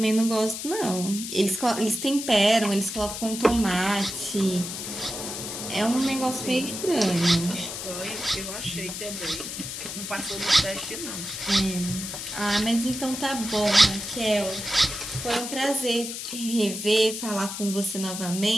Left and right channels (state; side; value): noise; left; hiss, 7 dB below the sound